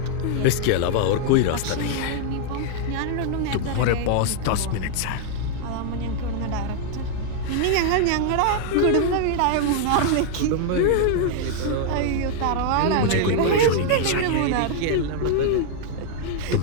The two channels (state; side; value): different; both; correlation 0.00